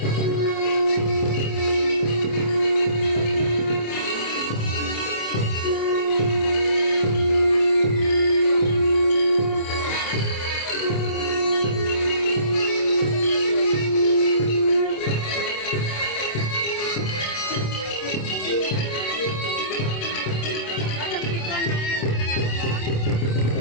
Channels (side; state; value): right; late; 27 ms